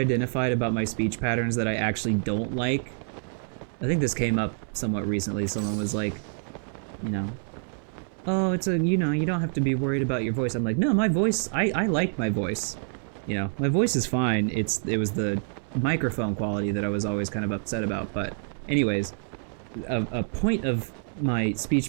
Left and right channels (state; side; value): silent; left; 60 dB below the other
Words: about my speech patterns that I actually don't like, I think this came up somewhat recently. Someone was like, you know, oh, it's a, you know, you don't have to be worried about your voice. I'm like, no, my voice, I like my voice. You know, my voice is fine. It was the microphone quality that I was always kind of upset about. But anyways, a point of my